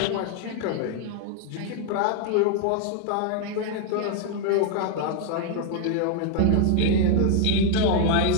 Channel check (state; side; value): different; both; correlation 0.00